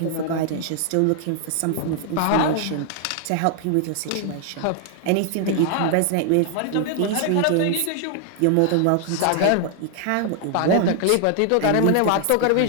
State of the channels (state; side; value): different; both; correlation 0.00